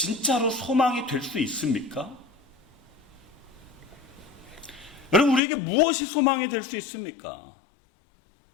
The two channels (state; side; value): drops out; right; at 5.4 s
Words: 소망이 될 수 있습니까? 여러분, 우리에게 무엇이 소망이 될 수 있습니까?